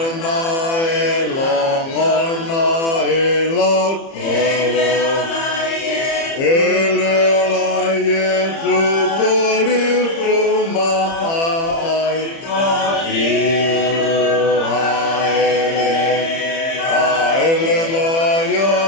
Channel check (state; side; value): late; right; 30 ms